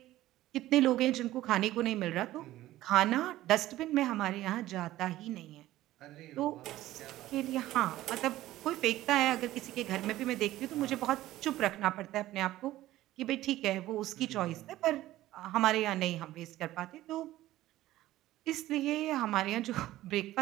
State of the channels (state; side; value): quieter; left; 15.4 dB